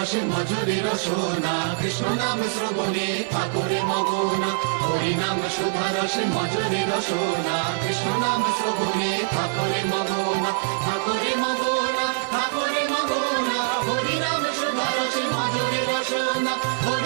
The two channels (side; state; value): left; silent; digital silence